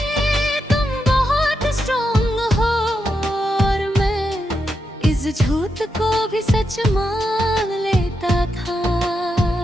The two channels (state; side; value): normal; both; correlation 0.84